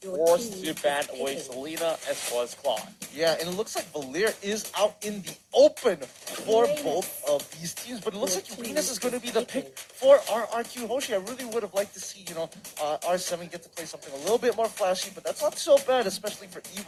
forced to ban away Selena as well as Claude. Yeah, and it looks like Valir is out in the open for both of these teams, but it looks like Uranus is going to be the pick for RRQ Hoshi. I really would have liked to see, R7 get to play something a little bit more flashy, but that's not so bad, especially for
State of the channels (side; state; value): both; identical; correlation 1.00